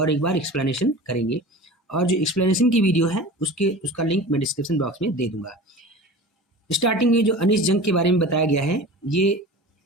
एक बार एक्सप्लेनेशन करेंगे। और जो एक्सप्लेनेशन की वीडियो है उसका लिंक मैं डिस्क्रिप्शन बॉक्स में दे दूंगा। स्टार्टिंग में जो अनीश जंग के बारे में बताया गया है, ये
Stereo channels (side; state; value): both; normal; correlation 0.36